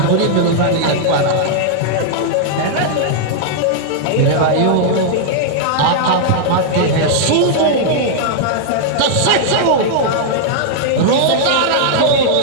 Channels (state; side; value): different; both; correlation -0.01